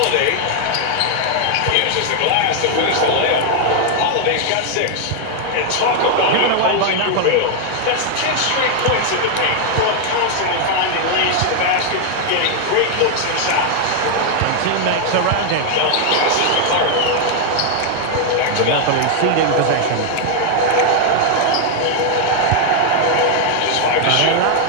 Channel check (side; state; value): both; different; correlation 0.00